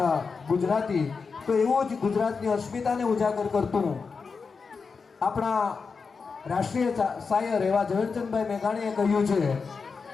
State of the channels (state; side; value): quieter; right; 5.0 dB